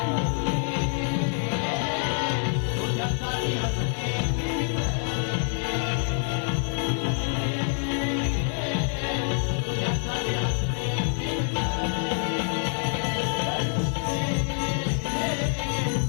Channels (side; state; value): right; silent; 58 dB below the other